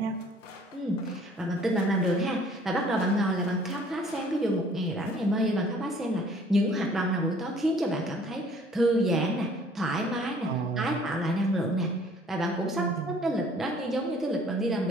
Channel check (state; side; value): normal; both; correlation 0.56